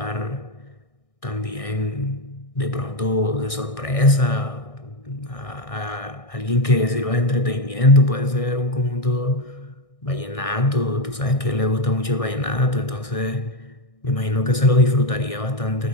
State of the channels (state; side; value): late; right; 1.6 ms